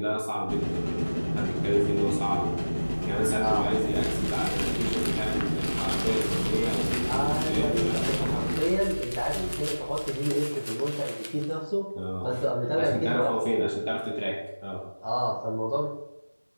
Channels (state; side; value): inverted; both; correlation -1.00